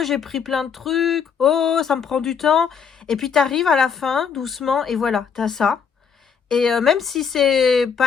j'ai pris plein de trucs. Oh, ça me prend du temps. Et puis, tu arrives à la fin, doucement, et voilà, tu as ça. Et même si c'est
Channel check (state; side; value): quieter; right; 6.8 dB